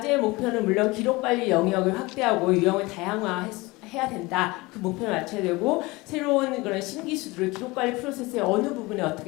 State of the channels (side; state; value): right; quieter; 22.6 dB